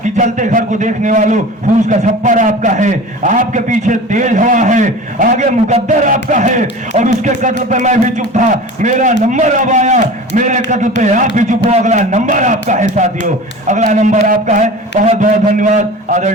कि जलते घर को देखने वालों, फूस का छप्पर आपका है, आपके पीछे तेज हवा है, आगे मुकद्दर आपका है, और उसके कत्ल पे मैं भी चुप था, मेरा नंबर अब आया, मेरे कत्ल पे आप भी चुप हो, अगला नंबर आपका है साथियों, अगला नंबर आपका है। बहुत बहुत धन्यवाद।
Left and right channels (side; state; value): both; normal; correlation 0.36